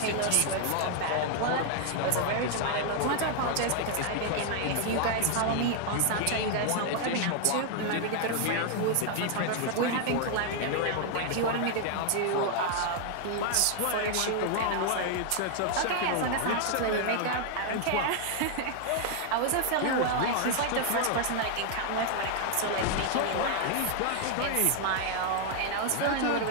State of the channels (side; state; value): both; different; correlation 0.00